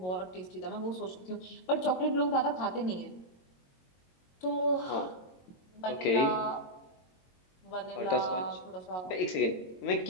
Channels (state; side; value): late; right; 22 ms